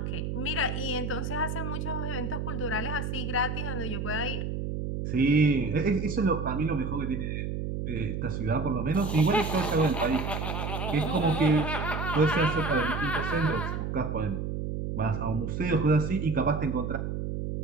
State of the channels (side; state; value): right; noise; hum, 3 dB below the sound